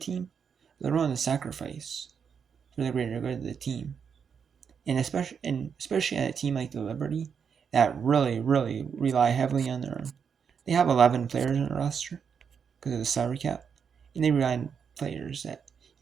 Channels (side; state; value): left; quieter; 6.8 dB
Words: They're willing to sacrifice for the greater good of the team. And especially at a team like the Liberty that really, really rely heavily on they have 11 players on the roster because of the salary cap, and they rely on players that,